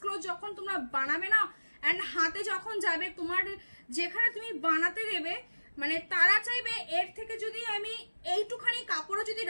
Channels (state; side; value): inverted; both; correlation -1.00